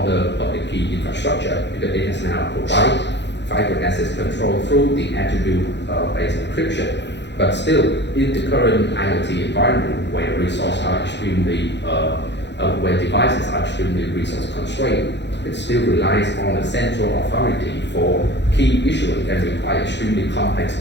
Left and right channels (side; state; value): right; late; 0.51 ms